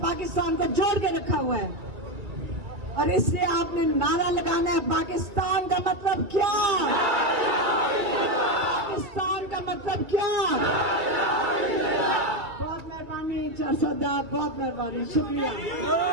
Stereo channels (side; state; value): left; late; 2.4 ms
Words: پاکستان کو جوڑ کے رکھا ہوا ہے. اور اس سے آپ نے نعرہ لگانا ہے, پاکستان کا مطلب کیا, پاکستان کا مطلب کیا. بہت مہربانی 400 بہت مہربانی, شکریہ.